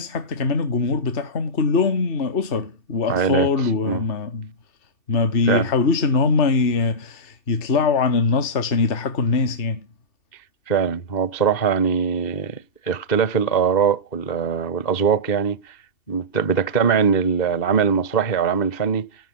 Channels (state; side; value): late; right; 2.7 ms